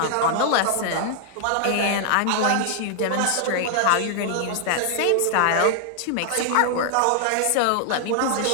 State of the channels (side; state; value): both; different; correlation -0.01